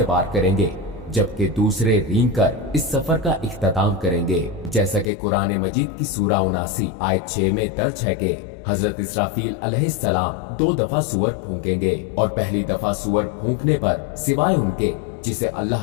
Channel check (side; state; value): right; drops out; at 5.1 s